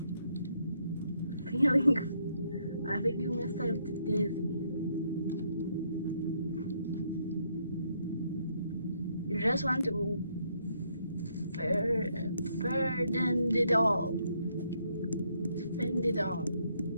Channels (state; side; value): inverted; both; correlation -0.72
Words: Feeling, I think you must have dizzy. You just want to burden it all. Spend it all.